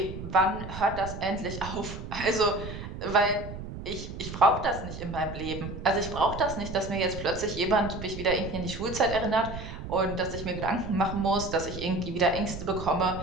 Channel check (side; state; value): right; noise; rumble, 9 dB below the sound